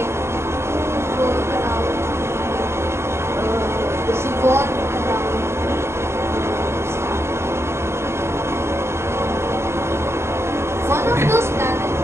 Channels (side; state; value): left; late; 0.13 ms